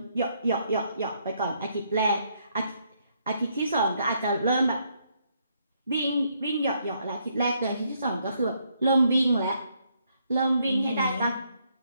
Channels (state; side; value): inverted; both; correlation -0.73